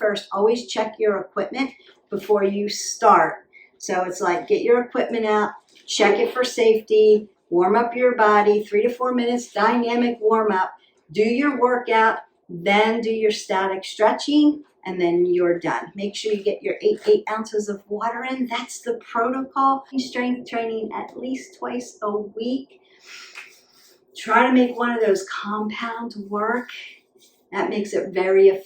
first. Always check your equipment before you start. So it's like, get your equipment out, check it for safety, warm up your body, 3 to 4 minutes, dynamic warm up, do your workout, then do your static stretching, and then you're done. Make sure you get your 8 ounces of water in. That's the protocol. Strength training at least twice a week. Try to make one of those compounds work. That makes it very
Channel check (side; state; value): both; identical; correlation 1.00